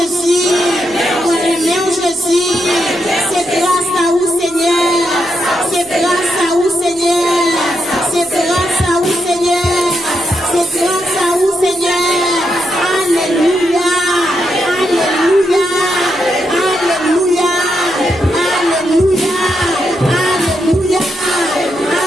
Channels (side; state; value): right; noise; hum, 24 dB below the sound